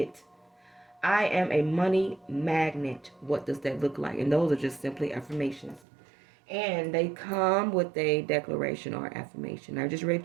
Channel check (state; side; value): drops out; left; at 5.9 s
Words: I am a money magnet. What does that look like? And those are just simply affirmations. And they come with a declaration or affirmation. I just